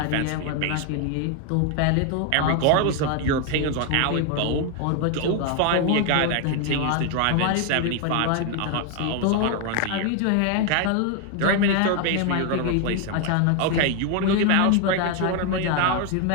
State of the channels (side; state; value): both; different; correlation 0.01